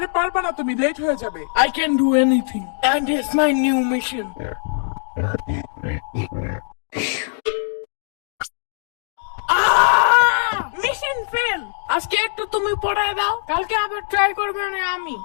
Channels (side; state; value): right; silent; digital silence